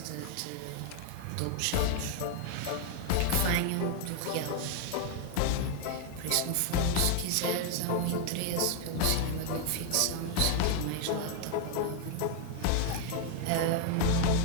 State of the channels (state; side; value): different; both; correlation 0.00